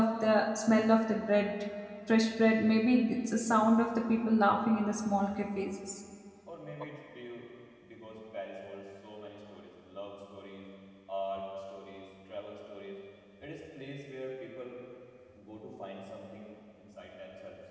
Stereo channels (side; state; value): both; identical; correlation 1.00